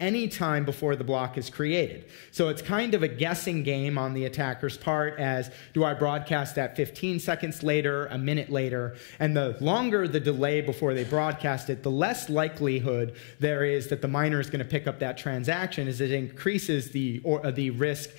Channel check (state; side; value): silent; right; 59 dB below the other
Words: any time before the block is created. So it's kind of a guessing game on the attacker's part as, do I broadcast that 15 seconds later, a minute later? And the longer the delay before they broadcast it, the less likelihood there is that the miner is going to pick up that transaction, as it increases the risk